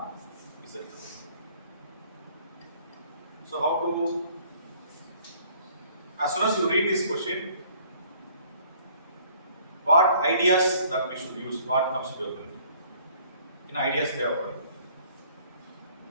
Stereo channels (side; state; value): both; inverted; correlation -0.58